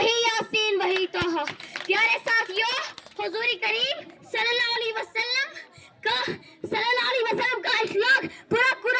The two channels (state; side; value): identical; both; correlation 1.00